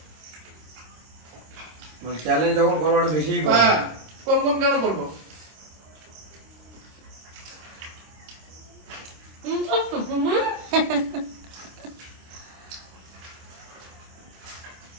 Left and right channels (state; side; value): late; left; 26 ms